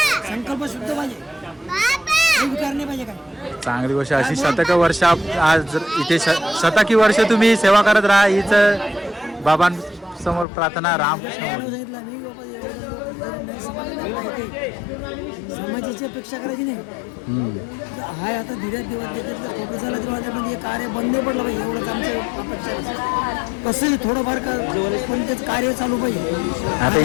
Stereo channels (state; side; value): drops out; right; at 10.5 s